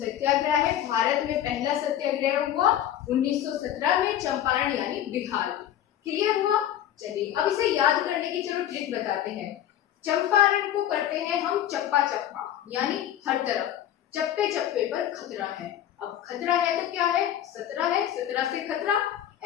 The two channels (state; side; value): quieter; right; 11.3 dB